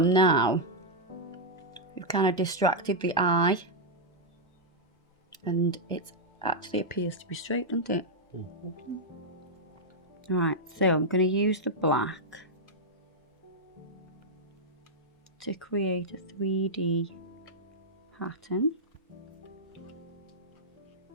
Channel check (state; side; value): normal; both; correlation -0.05